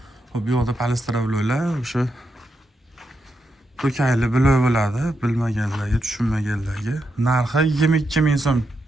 Hop, bu yoqda polistrobloylar o'sha to'kayli bloy bo'ladi, bilmaganlarga, tushunmaganlarga. Narxi 22 ming so'm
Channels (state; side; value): normal; both; correlation 0.84